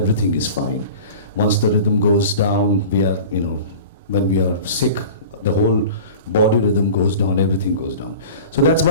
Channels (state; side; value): inverted; both; correlation -0.38